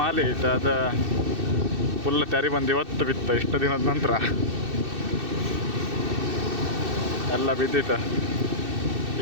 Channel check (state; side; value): late; left; 2.6 ms